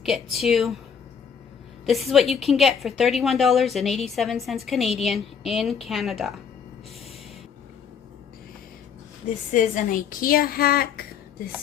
you can get for $31.87 Canadian in Canada. This is an IKEA hack.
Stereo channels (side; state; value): right; quieter; 7.0 dB